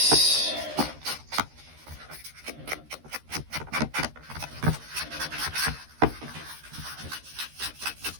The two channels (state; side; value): late; left; 13 ms